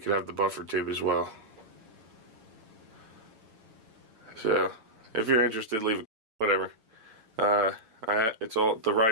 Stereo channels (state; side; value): late; left; 8.9 ms